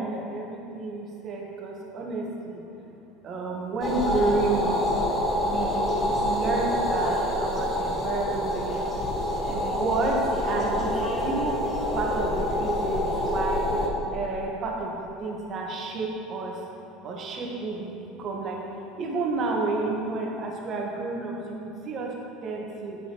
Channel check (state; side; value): normal; both; correlation 0.46